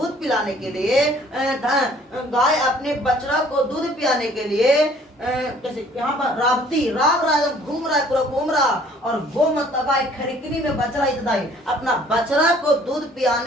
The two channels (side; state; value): both; normal; correlation 0.57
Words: पिलाने के लिए, गाय अपने बछड़ा को दूध पिलाने के लिए जैसे यहाँ पर रावती राव रहा है, घूम रहा है, पूरा घूम रहा, और गो मतलब गाय खरिकनी में बछड़ा हितदाई, अपना बछड़ा को दूध